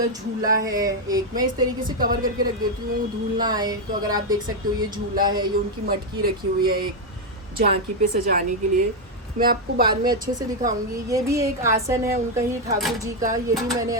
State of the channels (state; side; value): normal; both; correlation 0.03